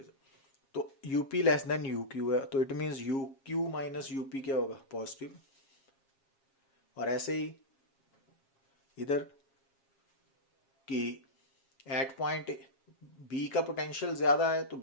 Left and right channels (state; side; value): late; right; 7.4 ms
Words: साथ। तो UP लेस देन UQ है, तो it means UQ minus UP क्या होगा, पॉजिटिव। और ऐसे ही इधर कि एट पॉइंट बी का पोटेंशियल ज्यादा है तो